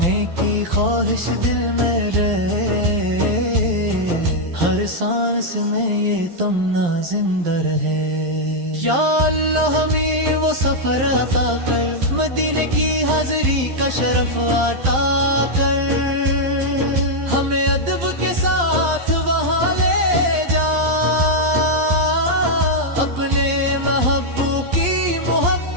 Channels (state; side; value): late; left; 11 ms